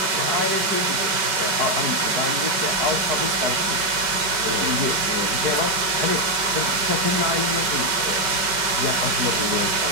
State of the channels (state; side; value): late; left; 5.2 ms